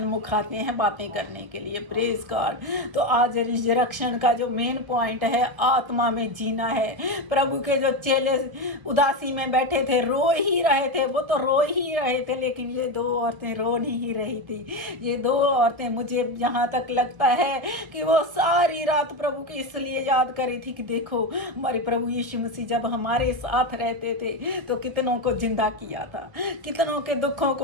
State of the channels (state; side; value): late; left; 1.3 ms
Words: आते हैं बातें करने के लिए। Praise God. तो आज रिजरेक्शन का जो मेन पॉइंट है, आत्मा में जीना है। प्रभु के जो चेले उदासी में बैठे थे, रो ही रहे थे, वो तो रो ही रहे थे, लेकिन ये 2 औरतें रो नहीं रही थी। ये 2 औरतें, मुझे यहाँ तक लगता है कि वो सारी रात प्रभु की इसलिए याद करी थी कि देखो, हमारे प्रभु यीशु मसीह जब हमारे साथ रहते थे तो कितनों को जिंदा किया था, कितनों के दुखों